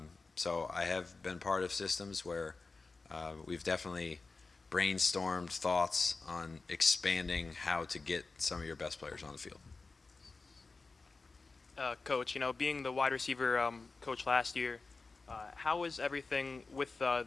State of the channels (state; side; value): quieter; right; 3.9 dB